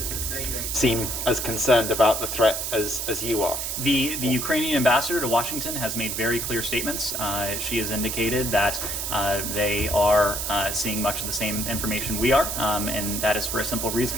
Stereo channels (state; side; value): noise; right; hiss, 3 dB below the sound